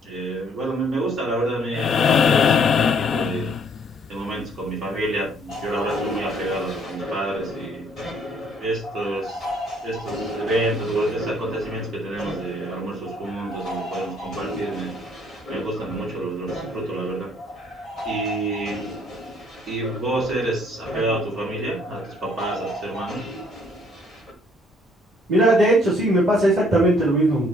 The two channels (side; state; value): both; normal; correlation 0.63